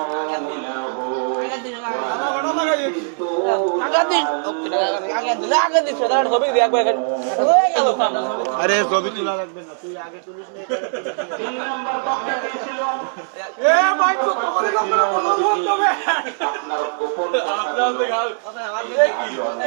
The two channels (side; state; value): left; silent; digital silence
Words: আরে ছবি তোলা লাগবে না, তুই আগে তুলিস নি। 3 নাম্বার পাপ কি ছিল? আপনার গোপন